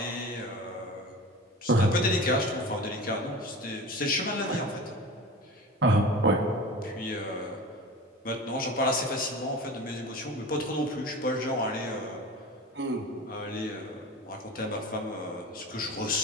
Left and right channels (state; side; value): normal; both; correlation 0.34